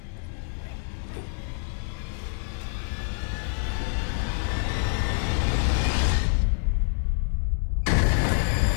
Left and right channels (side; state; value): right; silent; 57 dB below the other